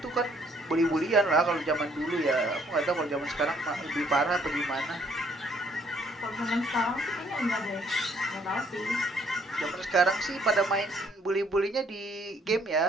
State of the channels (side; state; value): both; normal; correlation 0.65